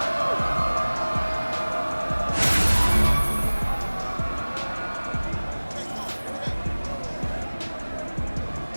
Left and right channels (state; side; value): inverted; both; correlation -1.00